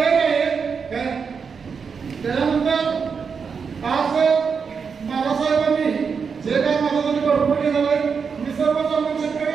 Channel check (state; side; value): quieter; left; 5.9 dB